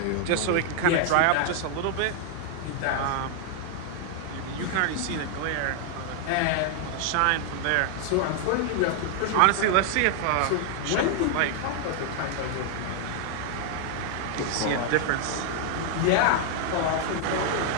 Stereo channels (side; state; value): both; different; correlation 0.00